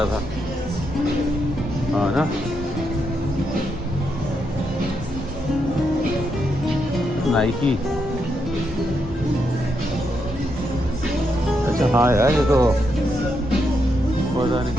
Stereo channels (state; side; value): normal; both; correlation 0.81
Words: था। हाँ ना, नाइकी। अच्छा हाँ यार, ये तो पता नहीं।